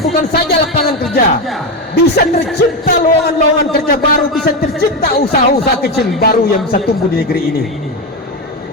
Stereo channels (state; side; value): normal; both; correlation 0.13